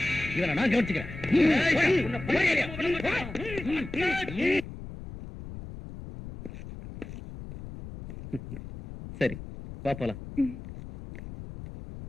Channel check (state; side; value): noise; left; rumble, 12 dB below the sound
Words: இவனை நான் கவனிச்சுக்கிறேன். சரி, வா போலாம்.